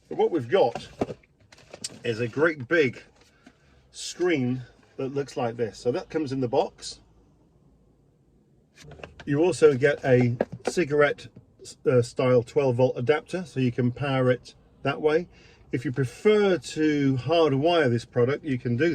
But what we've got is a great big screen that looks like this. So that comes in the box. You also get a cigarette style 12-volt adapter, so you can power it that way. If you prefer to hardwire this product, you can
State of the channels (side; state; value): both; identical; correlation 1.00